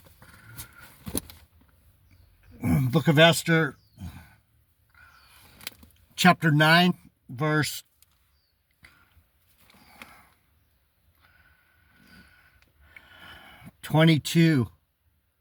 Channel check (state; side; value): identical; both; correlation 1.00